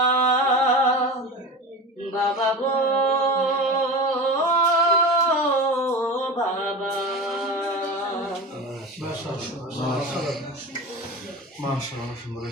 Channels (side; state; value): both; normal; correlation 0.29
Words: বাবা গো বাবা। মাশাআল্লাহ, মাশাআল্লাহ, সুন্দর।